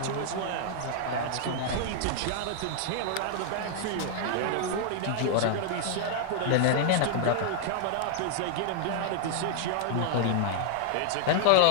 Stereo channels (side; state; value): both; different; correlation 0.00